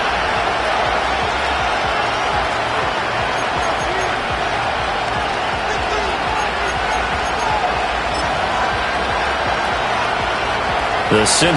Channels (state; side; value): identical; both; correlation 1.00